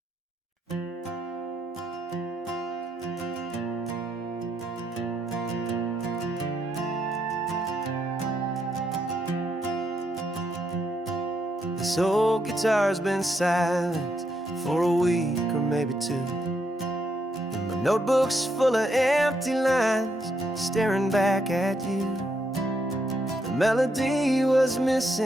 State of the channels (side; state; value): both; normal; correlation 0.77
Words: This old guitar's been silent for a week or maybe two, and my notebook's full of empty lines staring back at you. The melody was